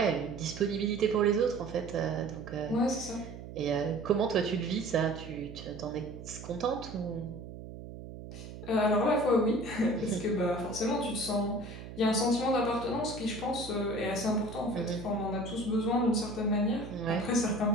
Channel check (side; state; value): right; noise; hum, 12 dB below the sound